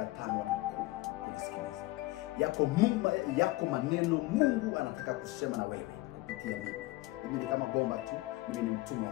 5 hadi 10 kunisikiliza. Yako maneno Mungu anataka kusema na wewe kupitia mimi. Mimi ni kama bomba tu, mimi ni mtumwa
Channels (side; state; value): right; quieter; 19.9 dB